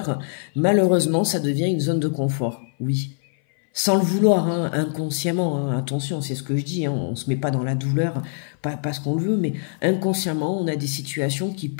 malheureusement, ça devient une zone de confort, oui. Sans le vouloir, hein, inconsciemment, hein, attention, c'est ce que je dis, hein, on ne se met pas dans la douleur, pas parce qu'on le veut, mais inconsciemment, on a des situations qui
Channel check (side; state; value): right; silent; 58 dB below the other